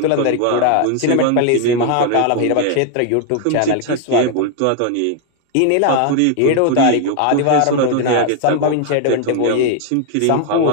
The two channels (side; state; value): both; different; correlation 0.00